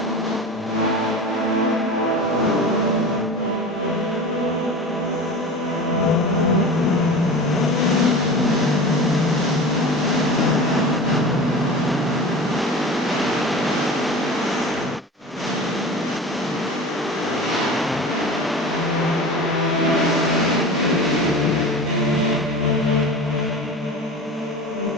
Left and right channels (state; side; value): normal; both; correlation 0.33